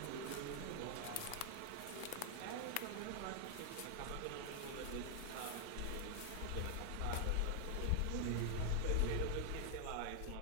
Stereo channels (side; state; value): both; different; correlation 0.00